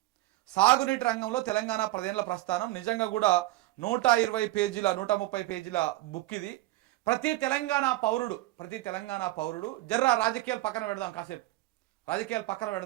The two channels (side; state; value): left; quieter; 17.8 dB